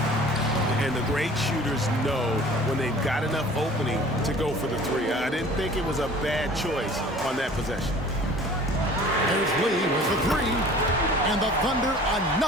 And the great shooters know when they've got enough opening to go for the three. I didn't think it was a bad choice on that possession. There's Lee with the three. And the Thunder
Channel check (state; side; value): normal; both; correlation 0.47